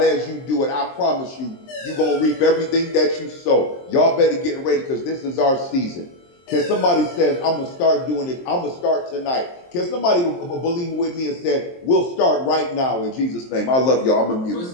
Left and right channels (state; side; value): late; right; 23 ms